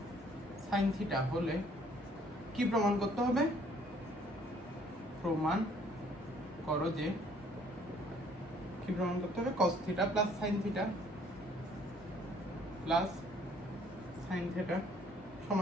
sin থিটা হলে কি প্রমাণ করতে হবে? প্রমাণ করো যে কি প্রমাণ করতে হবে? cos theta plus sin theta plus sin theta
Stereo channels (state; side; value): normal; both; correlation 0.60